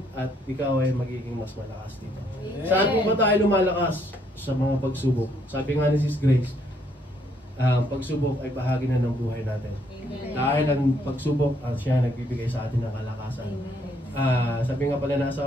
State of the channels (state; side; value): normal; both; correlation 0.69